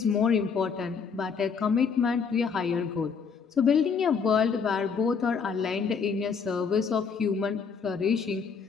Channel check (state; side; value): quieter; right; 5.9 dB